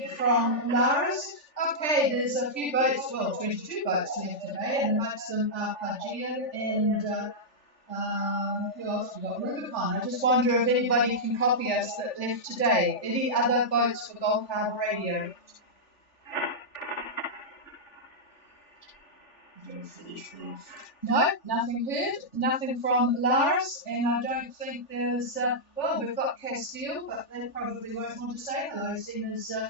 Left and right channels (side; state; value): right; late; 3.4 ms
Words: from Laris. Okay, there's a few boats, 22 boats left today, and amongst them are Pagia and who else we got? Rubicon. I just wonder if anybody can copy us that left today. Any other votes for Gulf Harbour Radio? No, nothing heard. Nothing from Lars, and I don't think there's. We've got Castile, but they probably won't want to say hello, seeing as